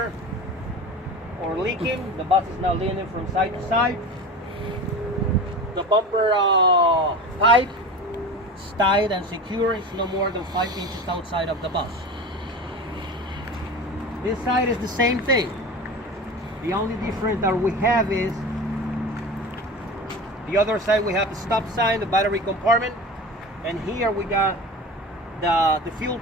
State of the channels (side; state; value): both; normal; correlation 0.31